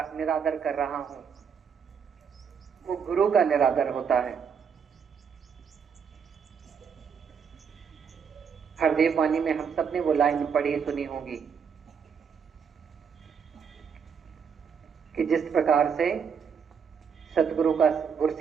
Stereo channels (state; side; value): quieter; left; 6.7 dB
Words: कर रहा हूं, वो गुरु का निरादर होता है। हरदेव वाणी में हम सब ने वो लाइन पढ़ी सुनी होगी कि जिस प्रकार से सतगुरु का,